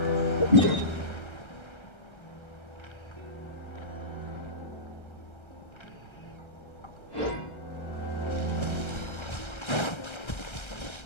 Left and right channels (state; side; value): late; right; 1.3 ms